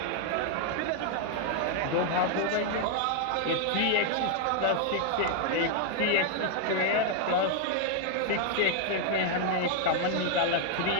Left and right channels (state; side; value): different; both; correlation 0.00